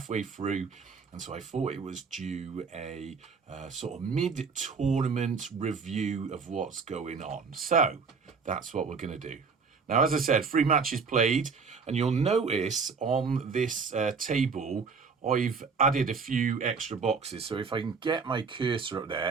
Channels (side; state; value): left; quieter; 5.2 dB